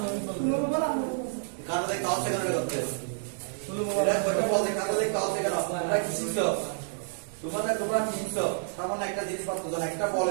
কারণ দেখতে হচ্ছে কেন করতে এটা কয়টা বল দেখতে হচ্ছে কেন? তোমরা কি শিখছো? তোমরা কি শিখছো? তেমন একটা জিনিস পাচ্ছ, একটা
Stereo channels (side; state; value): left; silent; digital silence